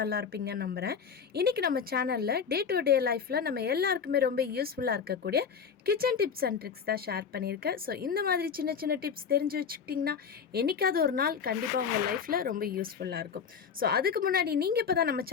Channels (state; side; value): quieter; right; 6.6 dB